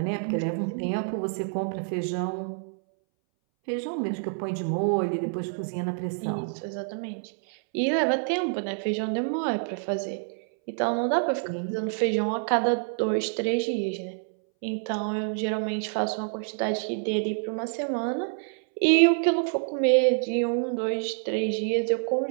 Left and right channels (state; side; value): silent; left; 60 dB below the other